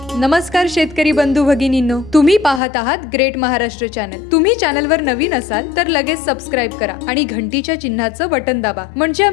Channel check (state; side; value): drops out; right; at 2.6 s